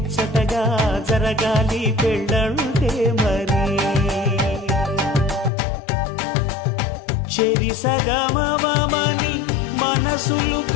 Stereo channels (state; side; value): drops out; right; at 5.5 s